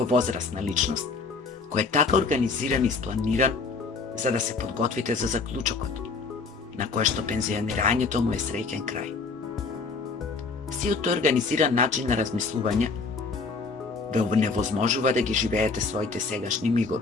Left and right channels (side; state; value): right; quieter; 4.3 dB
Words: возрастна личност, кој е така организиран и спланиран за да се подготвите за заклучокот, на кое што пензионирањето му е среќен крај. Сиот тој организиран начин на размислување ве невозможува да ги живеете своите сегашни